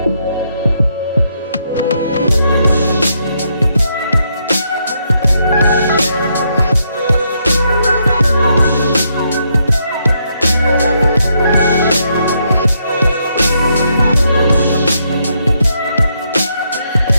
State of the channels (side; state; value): both; inverted; correlation -0.77